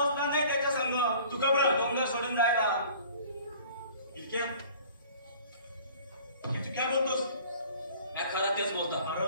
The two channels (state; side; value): inverted; both; correlation -0.49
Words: नाही त्याच्या संग. तू घबरा. डोंगर सोडून जायला. इतक्या तू काय बोलतोस? मी खरं तेच बोलतो. अरे